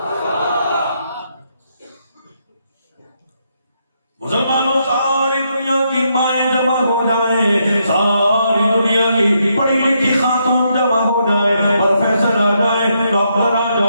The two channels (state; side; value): inverted; both; correlation -0.78